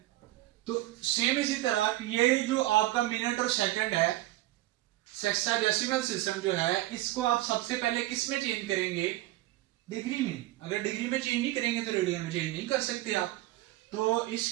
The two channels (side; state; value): left; quieter; 17.2 dB